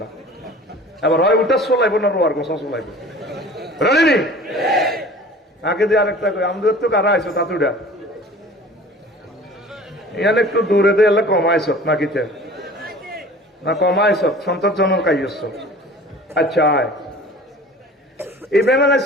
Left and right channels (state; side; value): normal; both; correlation 0.44